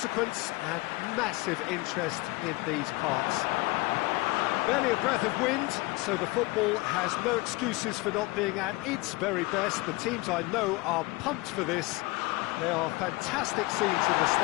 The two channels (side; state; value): right; quieter; 22.6 dB